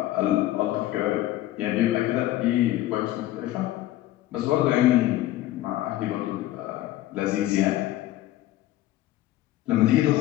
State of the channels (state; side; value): quieter; right; 14.9 dB